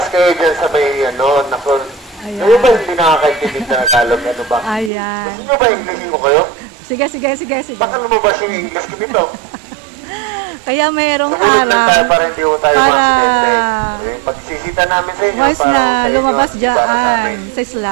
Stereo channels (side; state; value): left; drops out; at 4.9 s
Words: kayo dyan sa may, nakon. Ayan. Kayo ba hindi nakakaintindi na Tagalog? Ano ba? Ayan. Gusto nyo ba Inglesin ko kayo? Sige. Baka lumabas yung English ko dito. Kaya mayroong Sumunod lang tayo harang para hindi ko tayo para ma-accidente. Pagsisita namin sa inyo. once para na sa inyo, lumabas para sa dyan amin. sa